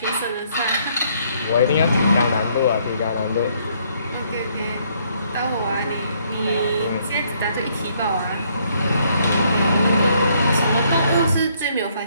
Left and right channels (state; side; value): inverted; both; correlation -0.68